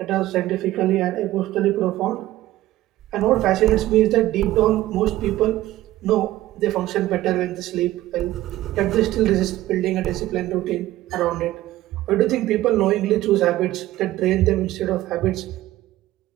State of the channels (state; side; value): quieter; left; 15.6 dB